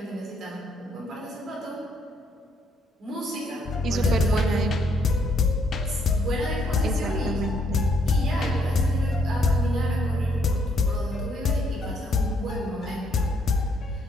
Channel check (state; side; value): normal; both; correlation 0.70